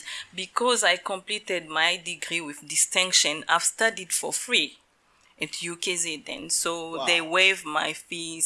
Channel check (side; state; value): both; identical; correlation 1.00